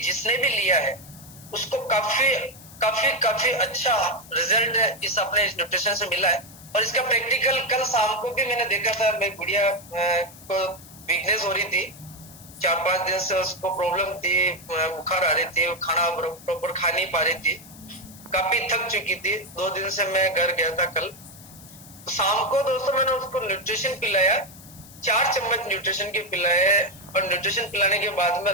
भी लिया है उसको काफी काफी काफी अच्छा रिजल्ट इस अपने इस न्यूट्रिशन से मिला है। और इसका प्रैक्टिकल कल शाम को भी मैंने देखा था, मेरी गुड़िया को वीकनेस हो रही थी, 4-5 दिन से उसको प्रॉब्लम थी, बुखार आ रही थी, खाना प्रॉपर खा नहीं पा रही थी, काफी थक चुकी थी। 2 दिन से मैं घर गया था कल, तो शाम को दोस्तों मैंने उसको न्यूट्रिशन पिलाया, 4 चम्मच न्यूट्रिशन के पिलाए। और न्यूट्रिशन पिलाने के बाद में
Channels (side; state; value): left; noise; hiss, 19 dB below the sound